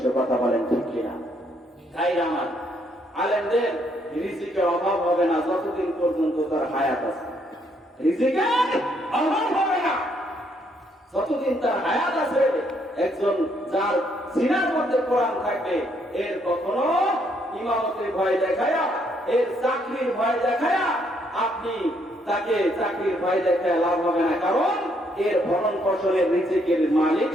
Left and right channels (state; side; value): normal; both; correlation 0.71